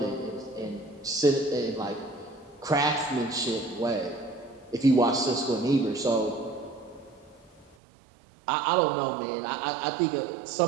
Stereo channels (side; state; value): left; drops out; at 7.8 s